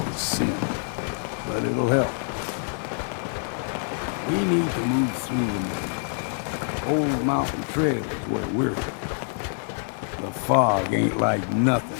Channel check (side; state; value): right; silent; 57 dB below the other